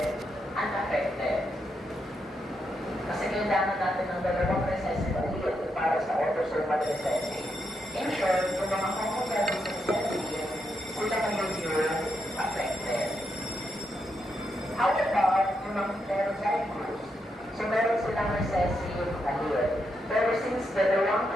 unaffected. Kasi kailangan natin ng dalawang recessive allele para sa autosomal recessive. In short, yung mga homozygous recessive, sila magiging affected. How about yung mga heterozygous? So meron silang recessive allele. Pero since dalawang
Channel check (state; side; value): normal; both; correlation 0.82